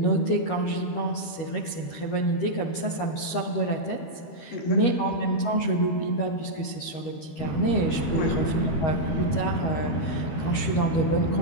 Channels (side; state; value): right; late; 13 ms